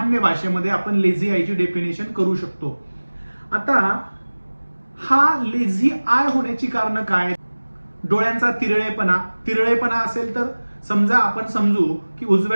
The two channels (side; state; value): both; inverted; correlation -1.00